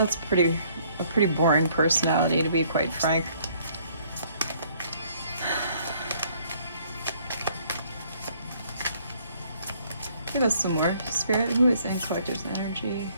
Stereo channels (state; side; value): inverted; both; correlation -0.63